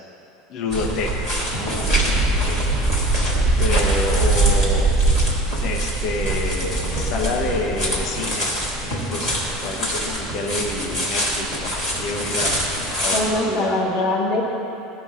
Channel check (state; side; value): normal; both; correlation 0.40